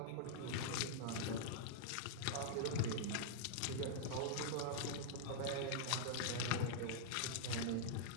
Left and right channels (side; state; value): both; different; correlation -0.02